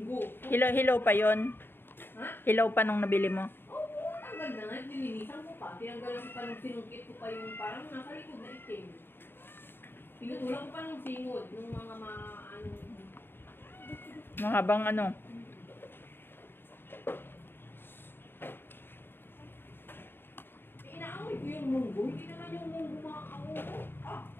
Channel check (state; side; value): late; right; 0.10 ms